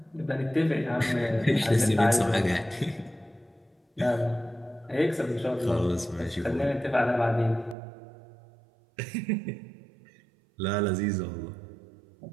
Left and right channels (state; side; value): drops out; left; at 7.8 s